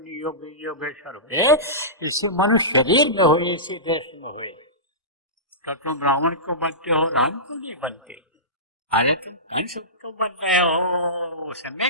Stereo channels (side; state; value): both; normal; correlation -0.20